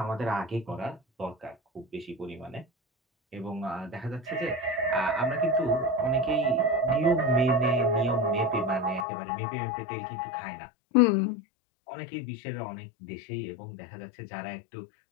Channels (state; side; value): drops out; right; at 9.1 s